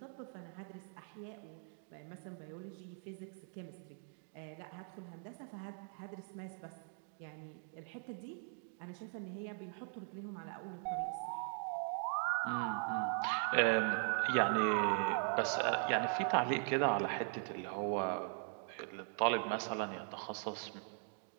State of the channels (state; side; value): silent; left; 51 dB below the other